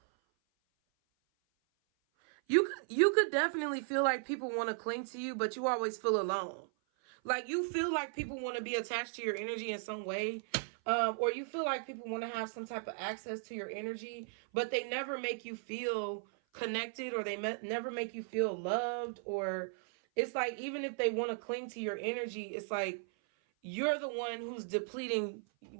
You could definitely feel like people want to cling to you, but you always feel alone. Like you feel like people want to be attached to your energy in some way. Or you feel like people want to have some type of access to your energy, but they never make you feel connected, or they never make you feel loved. Or it's like, even if they want to cling to your energy, it's like you're the one who's depleting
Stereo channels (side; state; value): left; silent; 53 dB below the other